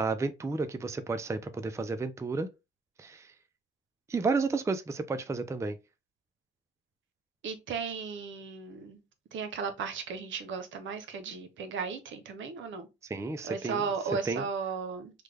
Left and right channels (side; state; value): left; quieter; 4.1 dB